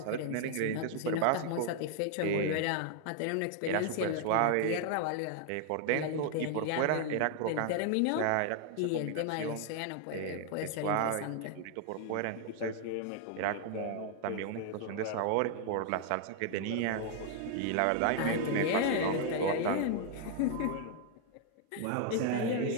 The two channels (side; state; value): both; different; correlation 0.00